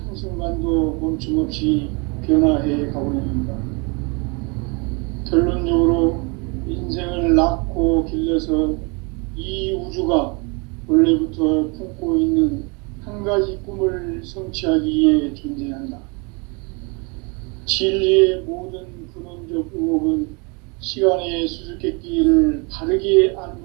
한순간도 멈춤없이 변화해 가고 있는가? 결론적으로 인생을 낳고 길러서 이 우주가 원래부터 품고 있는 한 가지 꿈을 성취하기 위해 존재한다. 진리의 모든 근원적 의혹은 시간의 수수께끼를 바르게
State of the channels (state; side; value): quieter; left; 31.3 dB